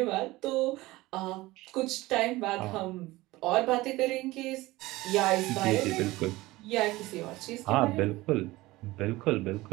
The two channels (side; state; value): left; quieter; 19.3 dB